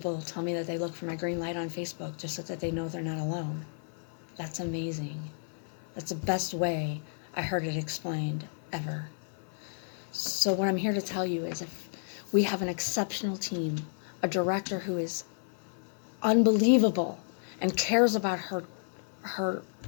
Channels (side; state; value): right; silent; 57 dB below the other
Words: tell me that they look for my green light on Facebook just so that they know they're not alone. That's amazing. That's the best way I heard it explained ever. So what I'm here to tell you is, if we have an exceptional team, a director who is unbelievable and cares about her